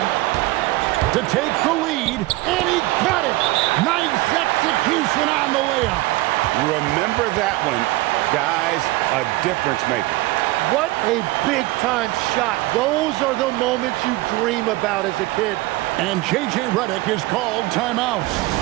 to take the lead, and he got it. Nice execution on the layup. Remember that one, guys, a difference maker. What a big-time shot. Those are the moments you dream about as a kid. And J.J. Redick is called timeout.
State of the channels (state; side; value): quieter; left; 19.5 dB